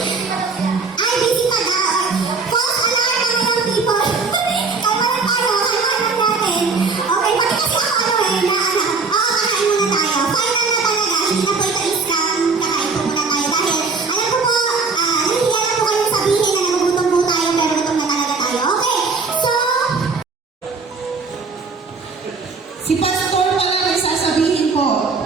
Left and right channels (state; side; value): quieter; left; 4.5 dB